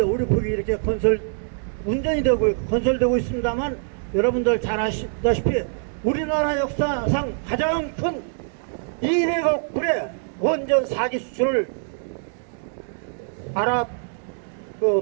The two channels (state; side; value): silent; left; digital silence